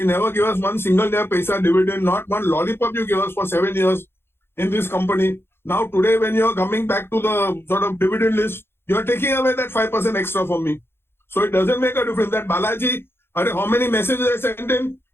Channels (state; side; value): late; right; 0.11 ms